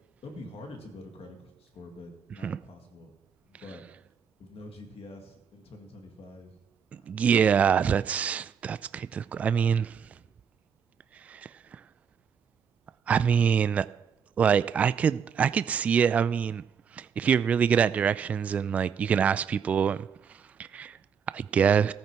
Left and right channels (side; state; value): left; quieter; 7.0 dB